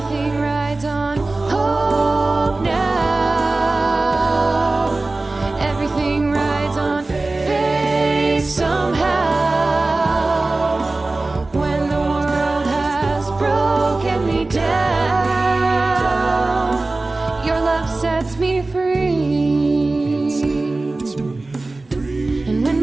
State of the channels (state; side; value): quieter; left; 3.2 dB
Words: rides on hope now. Everything rides on faith somehow. When the world has broken me down, your love sets me free. And when